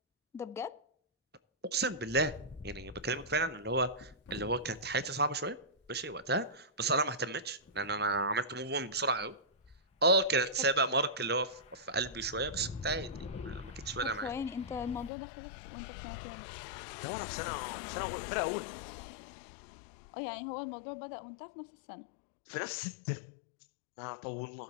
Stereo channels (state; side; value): drops out; right; at 15.1 s